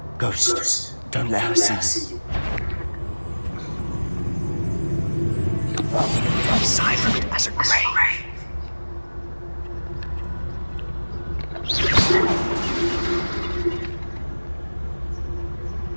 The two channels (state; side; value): inverted; both; correlation -1.00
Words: Ghost, don't let her see you. Silent as a grave.